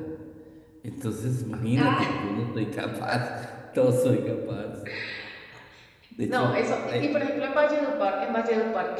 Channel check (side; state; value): both; identical; correlation 1.00